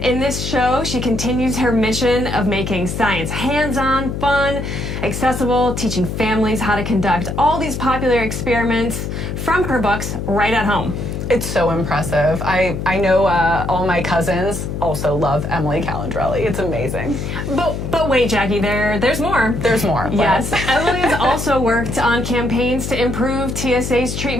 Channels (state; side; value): noise; left; hum, 5 dB below the sound